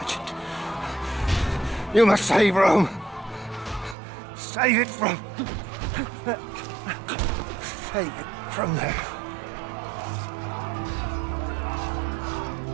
You must save Rome. Save it from... Save it from there.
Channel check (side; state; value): left; drops out; at 4.0 s